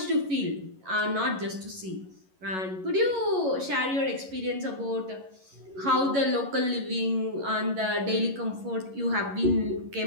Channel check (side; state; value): left; late; 11 ms